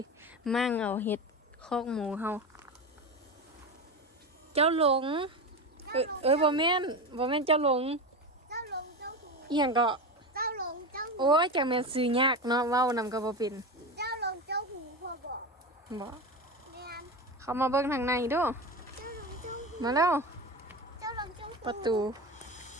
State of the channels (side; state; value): both; normal; correlation 0.22